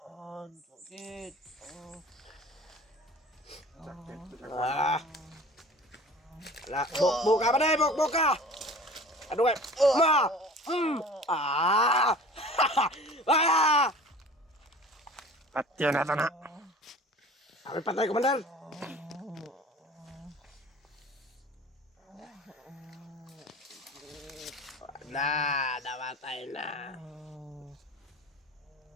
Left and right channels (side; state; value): both; normal; correlation 0.43